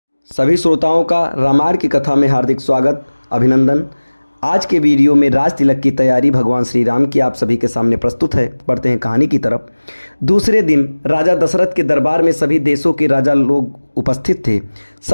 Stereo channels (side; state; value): both; inverted; correlation -1.00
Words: सभी श्रोताओं का रामायण की कथा में हार्दिक स्वागत, अभिनंदन। आज के वीडियो में राज तिलक की तैयारी भगवान श्री राम की आप सभी के सामने प्रस्तुत है। बढ़ते हैं कहानी की तरफ। दूसरे दिन राजा दशरथ के दरबार में सभी देशों के राजा लोग उपस्थित थे।